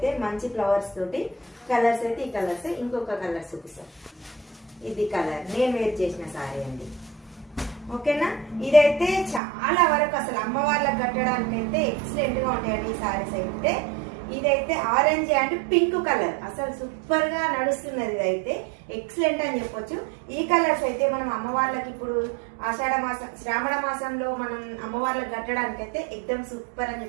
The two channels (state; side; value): drops out; left; at 9.4 s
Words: మంచి ఫ్లవర్స్ తోటి. కలర్స్ అయితే ఈ కలర్స్. ఇంకొక కలర్ చూపిస్తాను. ఇది కలర్ నేను వేర్ చేసిన సారీ అండి. ఓకేనా. ఇదైతే చాలా వరకు అసలు అమ్మవార్లకు కట్టడానికి అయితే ఎక్సలెంట్ గా ఉంటాయండి ఈ సారీస్ అయితే. ఇదైతే ఆరెంజ్ అండ్ పింక్ కలర్ అసలు సూపర్ గా నడుస్తున్నది. ఇదైతే ఎక్సలెంట్ అని చెప్పొచ్చు. ఈ కలర్స్ అయితే మనం అమ్మవార్లకు ఇప్పుడు ఆషాఢ మాసం శ్రావణ మాసంలో మనం అమ్మవార్లకు కట్టడానికి అయితే ఎక్దమ్ సూపర్ అని